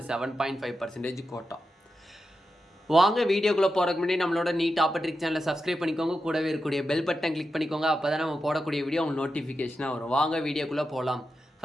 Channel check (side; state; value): both; normal; correlation 0.89